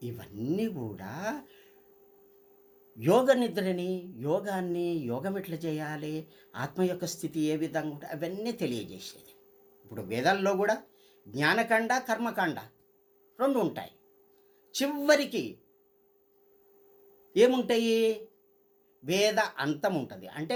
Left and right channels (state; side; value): identical; both; correlation 1.00